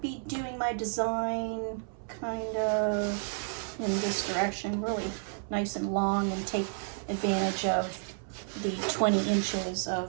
be doing my design kind of in this direction, really nice and long, and take advantage of the 20 inches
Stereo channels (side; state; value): left; silent; 57 dB below the other